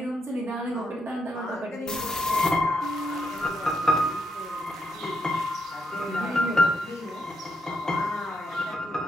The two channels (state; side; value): normal; both; correlation 0.78